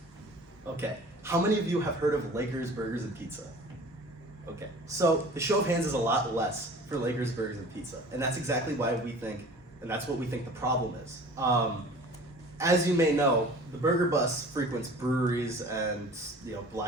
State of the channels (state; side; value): normal; both; correlation 0.44